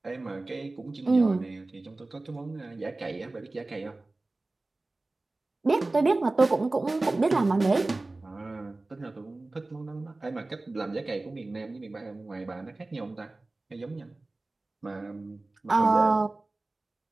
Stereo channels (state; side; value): quieter; left; 3.1 dB